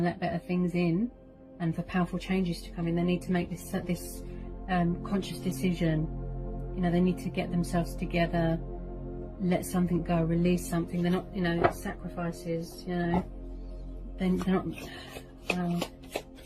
let better things in, and for powerful changes to come in, they need to make this conscious decision. You know, they need to get themselves together, let something go, release something. They're not, you know, sacrifices. You know, they're not.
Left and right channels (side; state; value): both; identical; correlation 1.00